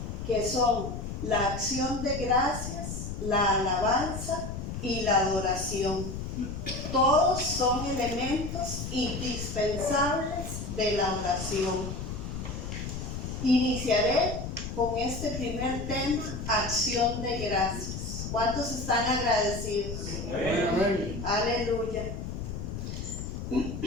que son la acción de gracias, la alabanza y la adoración. Todos son elementos indispensables de la oración. Iniciaré con este primer tema, acción de gracias. ¿Cuántos están agradecidos? Amén. Aleluya.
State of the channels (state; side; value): noise; left; rumble, 6 dB below the sound